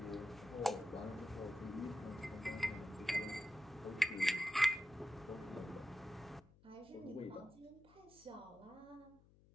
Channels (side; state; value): left; noise; hum, 25 dB below the sound